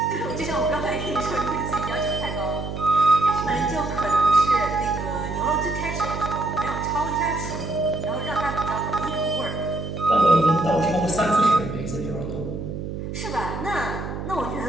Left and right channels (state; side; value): noise; right; hum, 6 dB below the sound